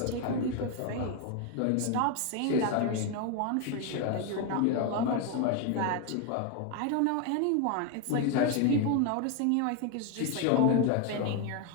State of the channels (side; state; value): both; different; correlation 0.01